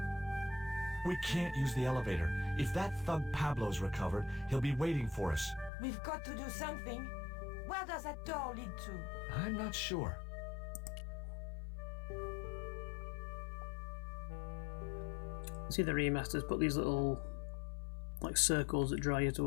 We can't use the elevator. If that thug Pablo's recovered, he'll be waiting for us. We've got to do something. Where does that door lead to? I'm not sure. See, the remasters put these little like circles that draw you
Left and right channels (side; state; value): right; drops out; at 5.7 s